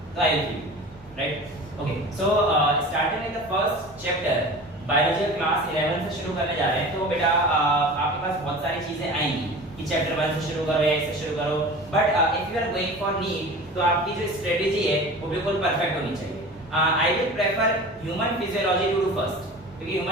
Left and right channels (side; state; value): both; normal; correlation 0.37